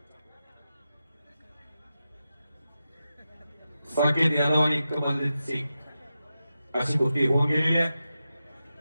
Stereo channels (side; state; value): both; inverted; correlation -0.91